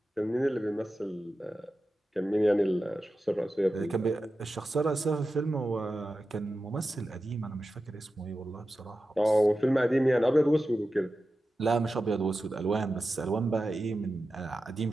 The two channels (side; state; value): both; normal; correlation 0.92